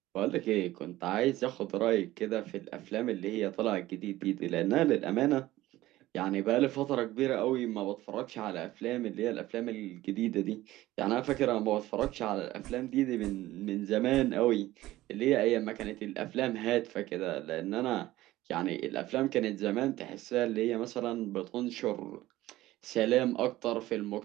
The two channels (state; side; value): quieter; left; 16.4 dB